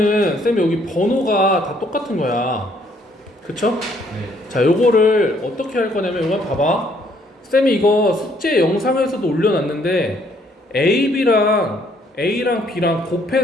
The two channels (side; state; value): both; normal; correlation 0.66